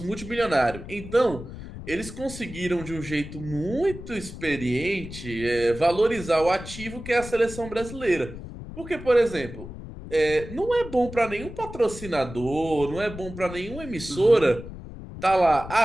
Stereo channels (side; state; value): left; noise; rumble, 12 dB below the sound